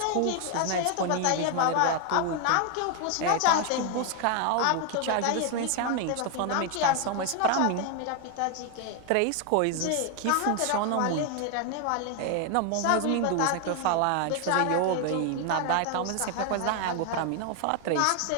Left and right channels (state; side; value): different; both; correlation 0.01